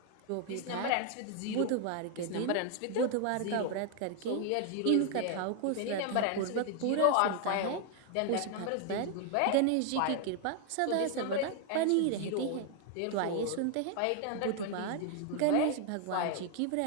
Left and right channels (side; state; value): both; different; correlation 0.00